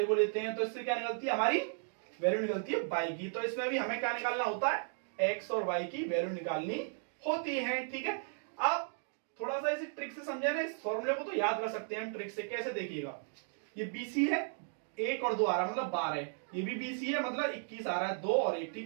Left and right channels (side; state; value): left; silent; digital silence